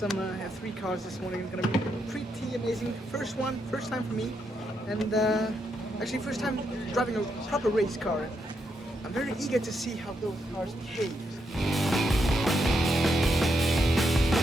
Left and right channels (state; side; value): normal; both; correlation 0.81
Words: F3 cars this morning. It's gonna be pretty amazing. First time for me, and actually first time driving a proper race car. I'm very eager to see how those cars behave.